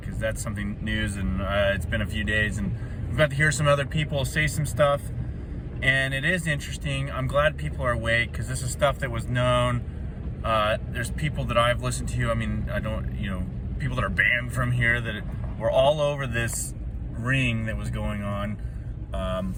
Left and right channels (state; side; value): identical; both; correlation 1.00